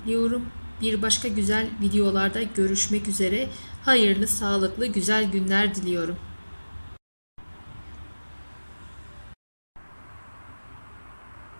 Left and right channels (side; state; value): both; inverted; correlation -1.00